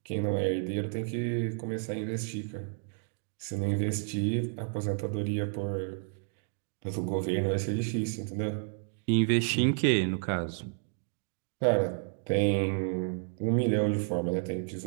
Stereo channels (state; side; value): silent; left; digital silence